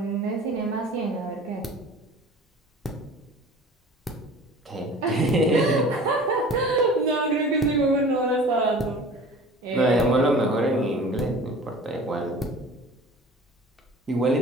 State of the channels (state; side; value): normal; both; correlation 0.43